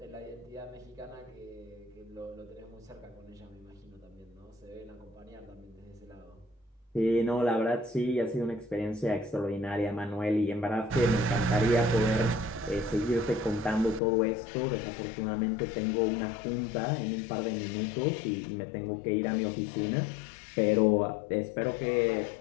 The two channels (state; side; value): drops out; right; at 14.0 s